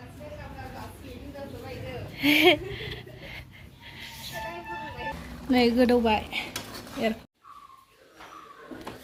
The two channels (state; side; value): identical; both; correlation 1.00